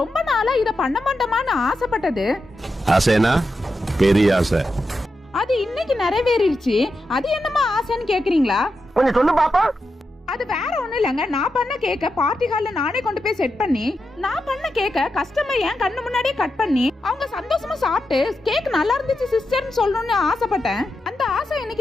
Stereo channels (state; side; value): normal; both; correlation 0.87